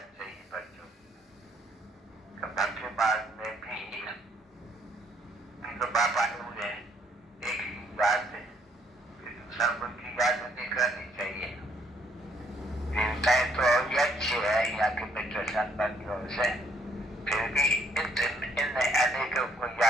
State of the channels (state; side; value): normal; both; correlation 0.68